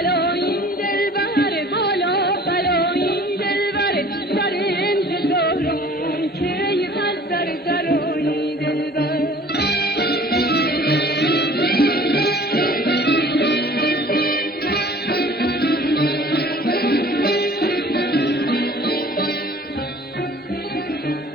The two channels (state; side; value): normal; both; correlation 0.49